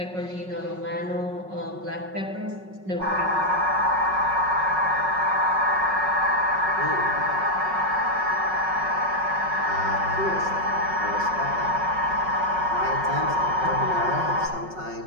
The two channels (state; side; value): late; left; 5.4 ms